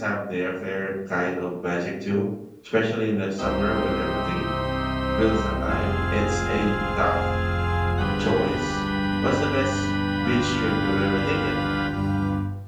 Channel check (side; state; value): both; identical; correlation 1.00